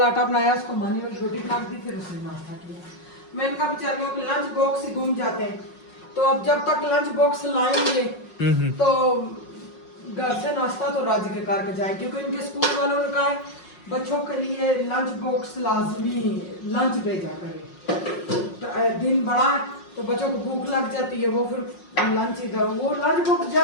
आटा बनाया, उसको मानी वाली रोटी काट दी, फिर उसने नाश्ता किया। मैंने कहा बेचारियों के लंच बॉक्स ही घूम जाते हैं, तो अब जब तक लंच बॉक्स लाएंगे तो घर से नाश्ता तो राज्य के करके जाए, क्योंकि इनके स्कूल वालों ने कहा है बच्चों के लिए लंच बॉक्स लाजमी लंच भेजा करें। दिन बड़ा है तो बच्चों को भूख लग जाती है, वो फिर लंच इधर, वो लंच बॉक्स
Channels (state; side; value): late; right; 5.5 ms